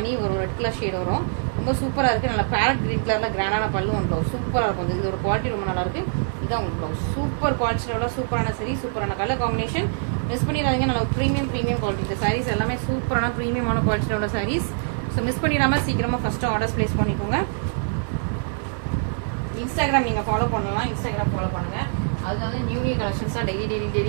வரும், ரெட் கலர் ஷேட் வரும். ரொம்ப சூப்பரா இருக்கு. நல்லா பேரட் கிரீன் கலர்ல கிராண்டான பல்லு ஒன் ப்ளவுஸ் சூப்பரா இருக்கும். இது ஒரு குவாலிட்டி ரொம்ப நல்லா இருக்கு. இதான் உங்களுக்கு ப்ளவுஸ் சூப்பர் குவாலிட்டியில உள்ள சூப்பரான சரி, சூப்பரான கலர் காம்பினேஷன். மிஸ் பண்ணிடாதீங்க. நல்ல ப்ரீமியம் குவாலிட்டி. இந்த சாரீஸ் எல்லாமே சூப்பரான ப்ரீமியமான குவாலிட்டியில உள்ள சாரீஸ். ஸோ மிஸ் பண்ணிடாம சீக்கிரமா ஃபர்ஸ்ட் ஆர்டர்ஸ் பிளேஸ் பண்ணிக்கோங்க. இன்ஸ்டாகிராம் நீங்க ஃபாலோ பண்ணலாம். இன்ஸ்டாகிராம் ஃபாலோ பண்ணுங்க. அது வந்து நியூ கலெக்ஷன்ஸா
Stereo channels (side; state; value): left; silent; 60 dB below the other